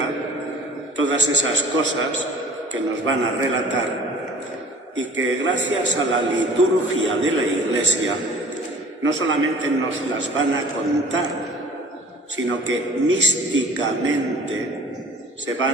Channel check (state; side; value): normal; both; correlation 0.48